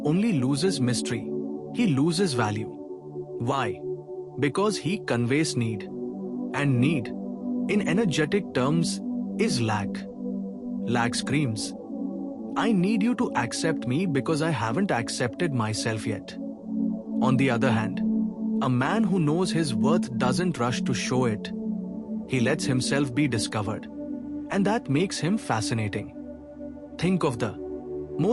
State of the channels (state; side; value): identical; both; correlation 1.00